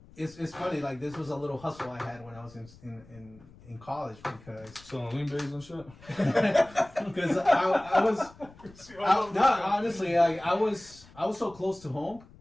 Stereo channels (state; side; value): noise; left; rumble, 23 dB below the sound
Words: It's funny, like this was a little hustle I had when I was in college because Selling lean bays and shit. because I was no, honestly, like I was so close to home